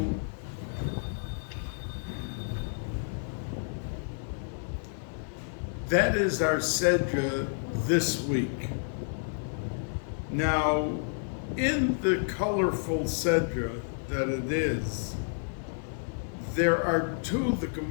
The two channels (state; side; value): silent; right; digital silence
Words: that is our sedra this week. Now, in the colorful sedra that it is, there are two, the